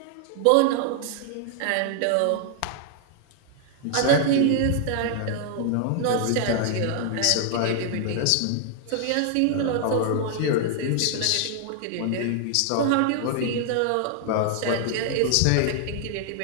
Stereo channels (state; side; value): different; both; correlation 0.00